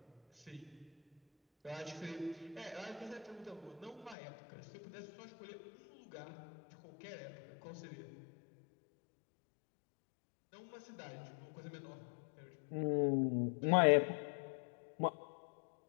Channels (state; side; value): drops out; right; at 4.2 s